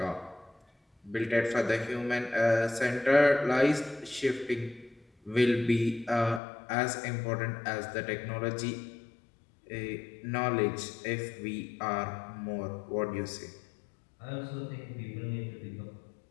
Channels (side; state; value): right; drops out; at 6.4 s